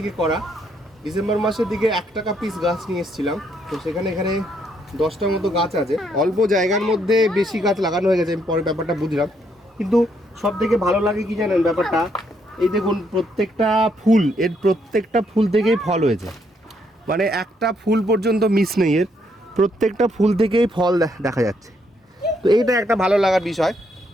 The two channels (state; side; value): normal; both; correlation 0.73